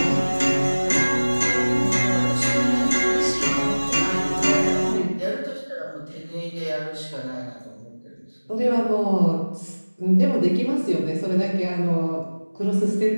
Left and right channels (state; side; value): inverted; both; correlation -1.00